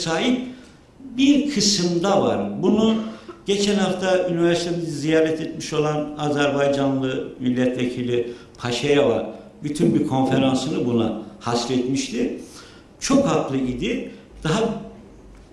bir kısımda var. Bunu geçen hafta üniversitemizi ziyaret etmiş olan Azerbaycanlı milletvekili Paşayeva bütün bir konferansını buna hasretmişti. Çok haklı idi. Daha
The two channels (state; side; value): identical; both; correlation 1.00